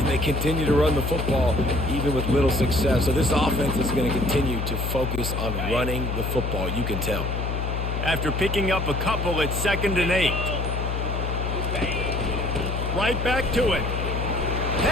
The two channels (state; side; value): noise; left; hum, 2 dB below the sound